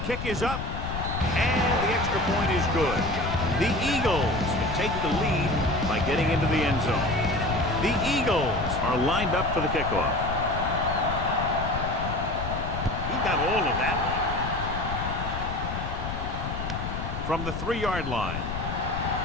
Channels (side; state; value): left; noise; rumble, 5 dB below the sound